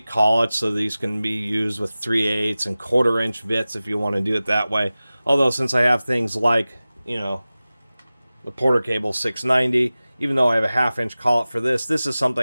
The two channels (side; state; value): both; inverted; correlation -0.97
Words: collets, so these can be used with 3/8 and 1/4 inch bits if you want to do it that way. Although since I have things like, you know, the Porter Cable 690, even though I have a 1/2 inch collet for this, this is